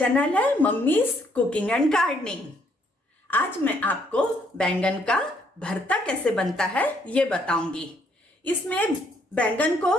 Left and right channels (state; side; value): normal; both; correlation 0.69